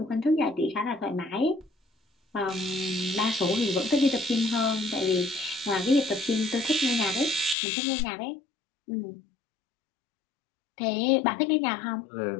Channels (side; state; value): right; drops out; at 7.6 s